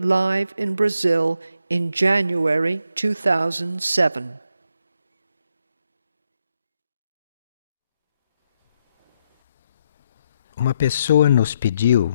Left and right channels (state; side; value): inverted; both; correlation -0.80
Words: in Brazil in January 2007. Uma pessoa nos